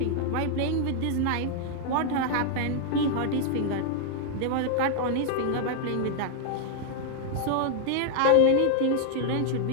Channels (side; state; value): both; different; correlation 0.00